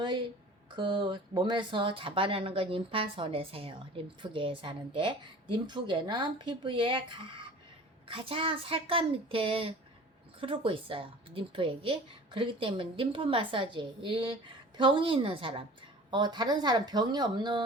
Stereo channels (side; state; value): both; normal; correlation 0.43